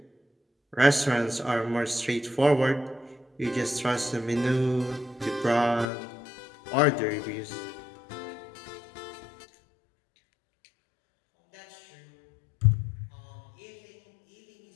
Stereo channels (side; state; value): right; drops out; at 5.9 s